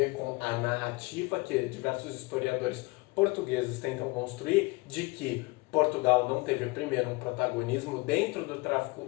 com a narrativa que diversos historiadores portugueses tentam construir de que Portugal não teve primeiro um protagonismo dentro do tráfico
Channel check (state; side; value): quieter; right; 25.1 dB